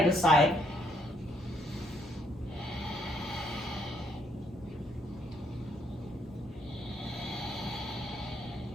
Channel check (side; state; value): both; normal; correlation 0.71